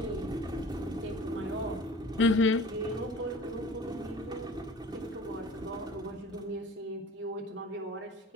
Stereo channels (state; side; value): normal; both; correlation 0.43